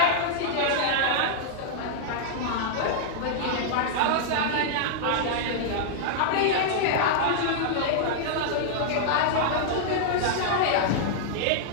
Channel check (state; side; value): different; both; correlation -0.01